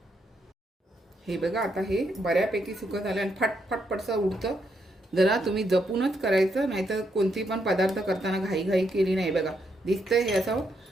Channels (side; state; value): both; normal; correlation 0.78